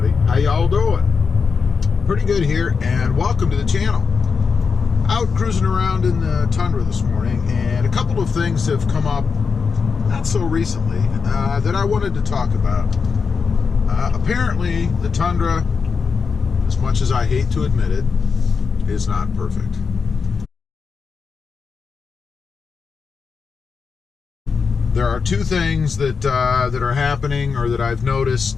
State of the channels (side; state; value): right; quieter; 5.4 dB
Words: How y'all doing? Pretty good here, and welcome to the channel. Out cruising around in the Tundra this morning, and a couple of things have come up not so recently that I wanted to talk about. Apparently the Tundra, as much as I hate to admit it, is not perfect. There are two things that are happening, or that I've